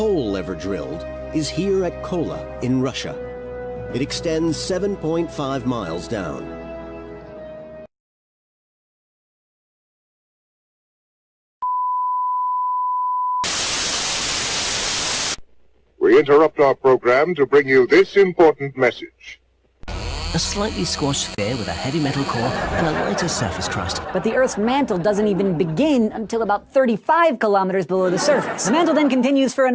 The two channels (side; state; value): both; identical; correlation 1.00